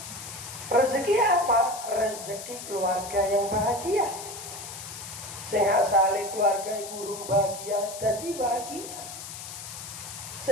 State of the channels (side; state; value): left; noise; hiss, 10 dB below the sound